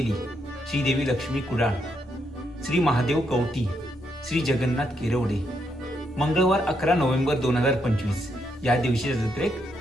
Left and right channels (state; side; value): normal; both; correlation 0.78